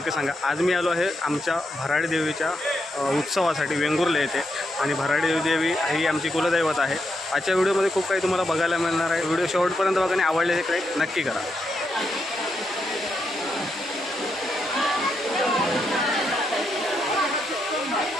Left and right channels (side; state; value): both; normal; correlation 0.82